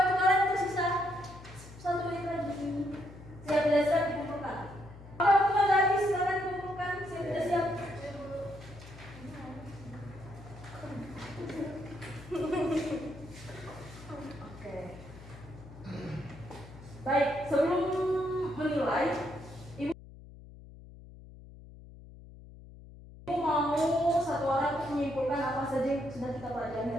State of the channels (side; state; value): left; noise; hum, 17 dB below the sound